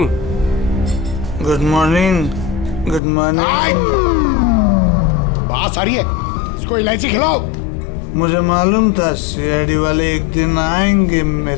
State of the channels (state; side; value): drops out; right; at 3.0 s